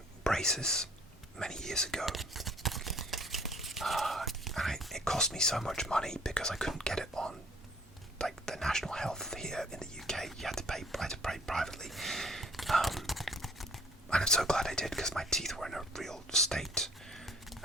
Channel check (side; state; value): both; normal; correlation 0.55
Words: braces many years ago, and it cost me so much money because I couldn't get it on like the National Health here in the UK. I had to pay privately, and I'm so glad I did because my teeth were in a real state,